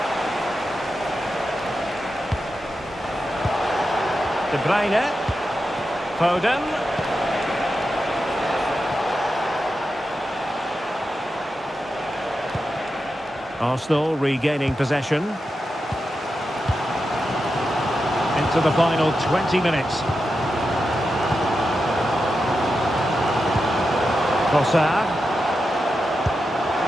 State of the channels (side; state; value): both; normal; correlation 0.89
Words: De Bruyne. Foden. Arsenal regaining possession. Into the final 20 minutes. Trossard.